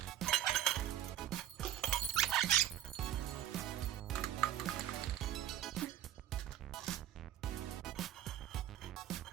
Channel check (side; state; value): left; quieter; 12.0 dB